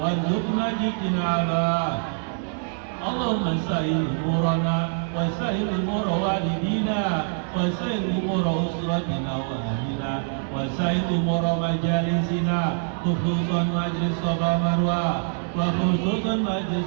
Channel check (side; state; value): left; silent; digital silence